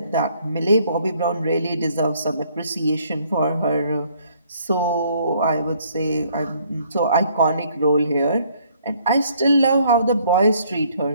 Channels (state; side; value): inverted; both; correlation -0.64